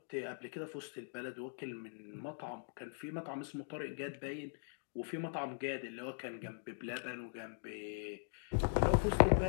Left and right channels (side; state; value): right; silent; digital silence